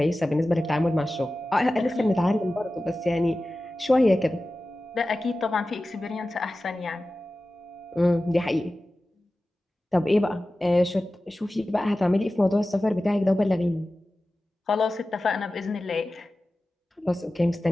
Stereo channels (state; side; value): normal; both; correlation 0.95